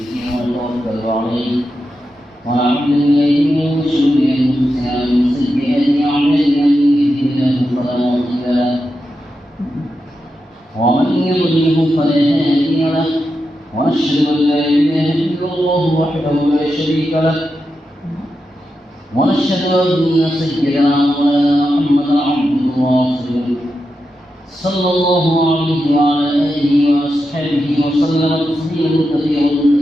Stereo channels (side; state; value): both; normal; correlation 0.88